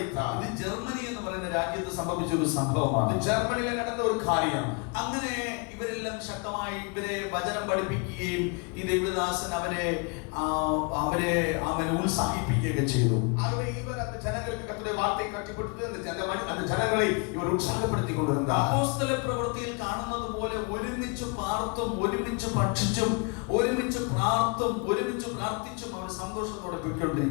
ഇത് ജർമ്മനി എന്ന് പറയുന്ന രാജ്യത്ത് സംഭവിച്ച ഒരു സംഭവമാണ്. ജർമ്മനിയിൽ നടന്ന ഒരു കാര്യം. അങ്ങനെ ഇവരെല്ലാം ശക്തമായി ഇവരെ വചനം പഠിപ്പിക്കുകയും ഈ ദൈവദാസൻ അവരെ ഉത്സാഹിപ്പിക്കുകയൊക്കെ ചെയ്തു. ആകെ ഇവർ அந்த ജനങ്ങൾക്ക് കർത്തരുടെ വാർത്തയെ കട്ടിപ്പെടുത്തി அந்த ജനങ്ങളെ ഇവർ ഉത്സാഹപ്പെടുത്തി കൊണ്ടിരുந்தார். അപ്പോസ്തല പ്രവൃത്തിയിൽ കാണുന്നത് പോലെ ഒരുമിച്ച് പാർത്തും ഒരുമിച്ച് ഭക്ഷിച്ചും ഒരുമിച്ച് പ്രാർത്ഥിച്ചും അവർ സന്തോഷത്തോടെ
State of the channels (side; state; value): right; quieter; 33.1 dB